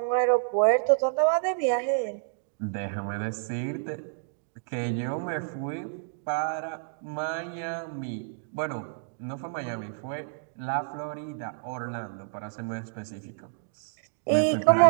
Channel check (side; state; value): left; silent; digital silence